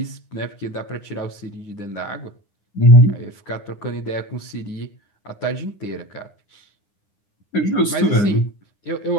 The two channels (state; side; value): late; right; 9.8 ms